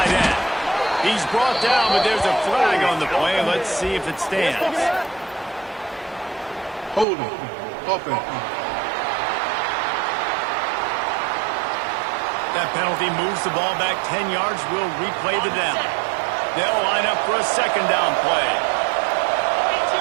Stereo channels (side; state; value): left; drops out; at 7.1 s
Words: end. He's brought down, but there's a flag on the play. Let's see if it stands. Hold him. Open. That penalty moves the ball back 10 yards. We'll replay the down. They'll line up for a 2nd down play.